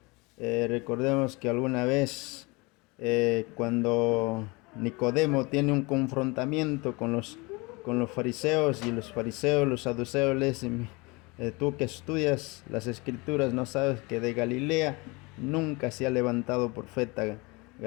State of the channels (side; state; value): right; quieter; 26.3 dB